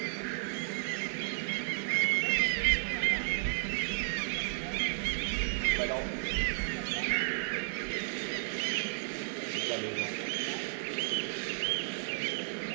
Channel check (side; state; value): left; silent; digital silence